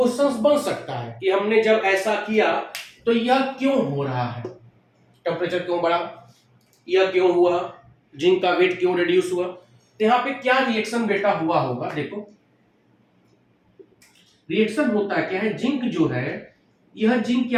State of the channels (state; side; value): identical; both; correlation 1.00